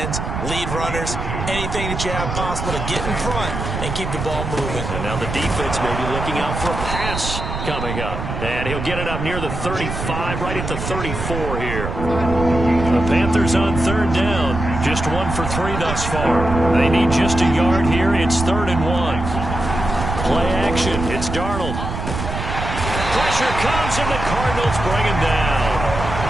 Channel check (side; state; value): right; noise; rumble, 5 dB below the sound